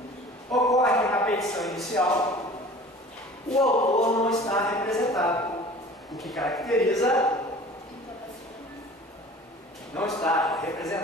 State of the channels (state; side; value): normal; both; correlation 0.44